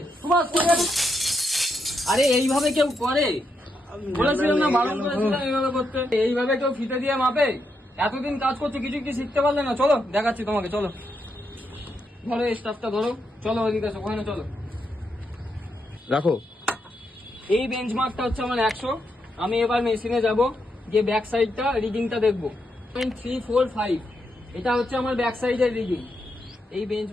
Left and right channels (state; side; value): normal; both; correlation 0.82